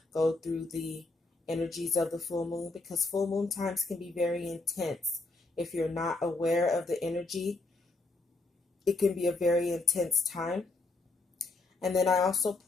go through the energies of the full moon, because full moon times can be very intense. If you're not aware of the energy, it can be a very intense time. And then I also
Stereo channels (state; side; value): quieter; right; 3.3 dB